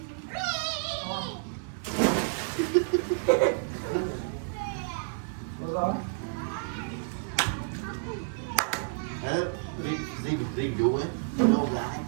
riêng vụ ấy đâu gái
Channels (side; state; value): left; silent; digital silence